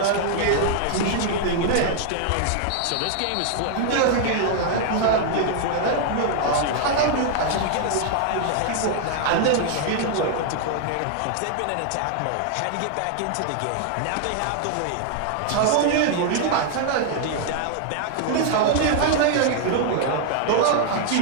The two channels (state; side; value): different; both; correlation 0.00